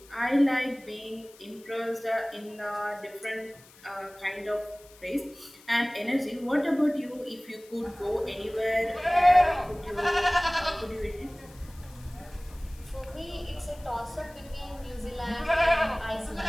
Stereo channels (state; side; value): noise; left; hiss, 24 dB below the sound